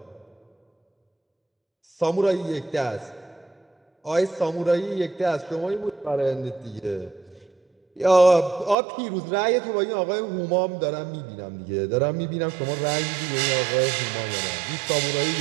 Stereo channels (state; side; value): drops out; left; at 8.8 s